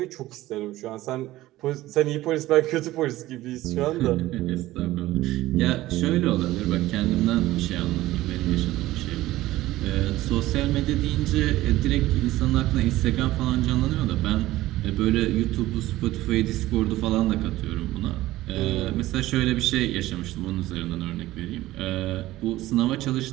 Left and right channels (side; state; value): left; quieter; 16.4 dB